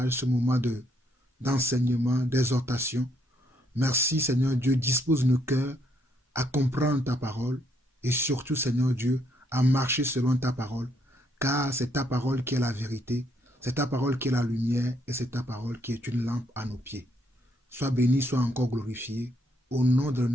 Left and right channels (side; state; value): both; normal; correlation 0.72